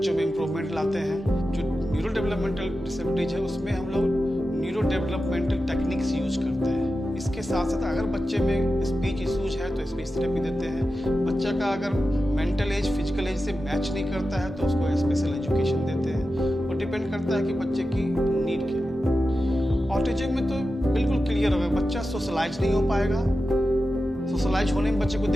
में इम्प्रूवमेंट लाते हैं। जो न्यूरो डेवलपमेंटल डिसेबिलिटीज है उसमें हम लोग न्यूरो डेवलपमेंटल टेक्निक्स यूज करते हैं। इसके साथ साथ अगर बच्चे में स्पीच इशूज है तो स्पीच थेरेपी देते हैं। बच्चा का अगर मेंटल एज फिजिकल एज से मैच नहीं करता है तो उसको स्पेशल एजुकेशन देते हैं और डिपेंड करता है कि बच्चे की नीड क्या है। ऑटिज्म में तो बिल्कुल क्लियर होगा, बच्चा सोशलाइज नहीं हो पाएगा, सोशलाइज होने में बच्चे को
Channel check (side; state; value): both; normal; correlation 0.92